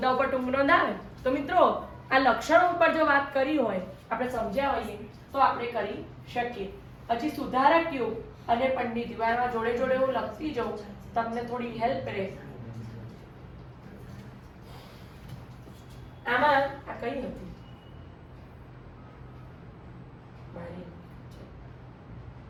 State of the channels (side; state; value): both; identical; correlation 1.00